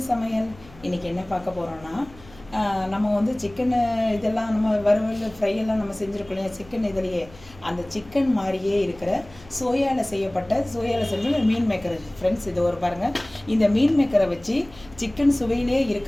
சமையல். இன்றைக்கி என்ன பார்க்க போகிறோன்னா, நம்ம வந்து சிக்கனு இதெல்லாம் நம்ம வறுவல் ஃப்ரை எல்லாம் நம்ம செஞ்சுருக்கோம் இல்லையா, சிக்கன் இதுலேயே அந்த சிக்கன் மாதிரியே இருக்கிற சோயாவில் செய்யப்பட்ட மீன் மேக்கர் ஃப்ரெண்ட்ஸ். இது ஒரு பாருங்கள், இந்த மீன் மேக்கரை வச்சு சிக்கன் சுவையிலே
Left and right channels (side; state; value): left; noise; hum, 23 dB below the sound